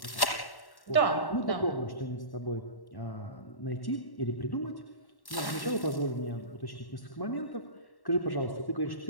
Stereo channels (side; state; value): right; late; 1.1 ms